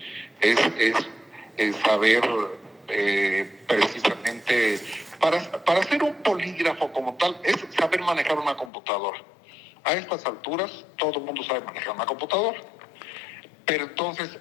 Es saber precisamente, para hacer un polígrafo como tal, es saber manejar una computadora. A estas alturas, todo el mundo sabe manejar una computadora. Pero entonces,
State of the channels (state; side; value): drops out; right; at 8.7 s